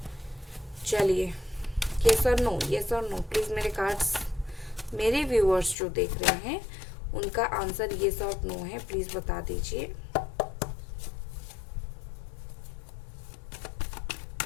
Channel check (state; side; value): drops out; right; at 5.8 s